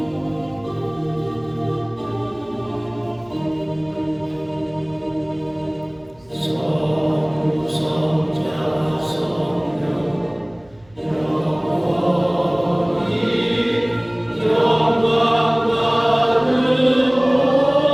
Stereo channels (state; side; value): noise; right; hum, 29 dB below the sound